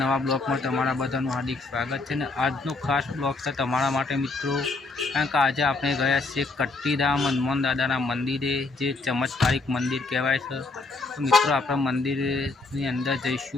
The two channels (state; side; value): quieter; right; 3.6 dB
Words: ब्लॉग में तमारा बधाનું हार्दिक स्वागत है। आजनो खास ब्लॉग है तमारा माटे मित्रों, कारण के आज आपणे गया छे कट्टीधाम हनुमान दादाना मंदिरे, जे चमत्कारिक मंदिर कहेवाय छे। तो मित्रों आपणे मंदिरनी अंदर